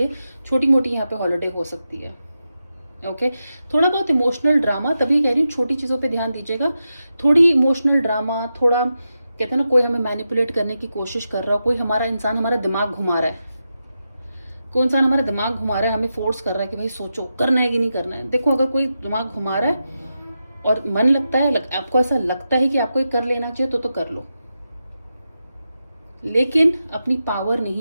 छोटी मोटी यहाँ पे हॉलीडे हो सकती है। ओके थोड़ा बहुत इमोशनल ड्रामा, तभी कह रही हूँ छोटी चीज़ों पे ध्यान दीजिएगा। थोड़ी इमोशनल ड्रामा, थोड़ा कहते हैं ना कोई हमें मैनिपुलेट करने की कोशिश कर रहा हो, कोई हमारा इंसान हमारा दिमाग घुमा रहा है, कोई इंसान हमारा दिमाग घुमा रहा है, हमें फोर्स कर रहा है कि भाई सोचो करना है कि नहीं करना है। देखो अगर कोई दिमाग घुमा रहा है और मन लगता है, आपको ऐसा लगता है कि आपको ये कर लेना चाहिए तो कर लो, लेकिन अपनी पावर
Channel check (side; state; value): both; inverted; correlation -0.89